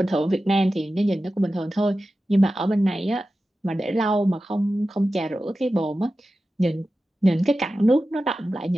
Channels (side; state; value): both; normal; correlation 0.93